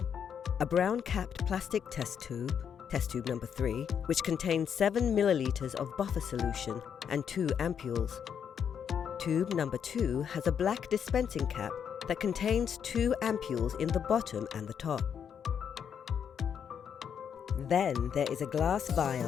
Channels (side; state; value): right; quieter; 7.8 dB